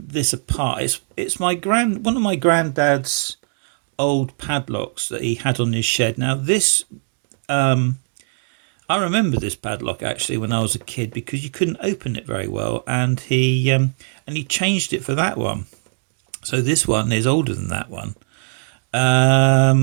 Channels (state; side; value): silent; left; digital silence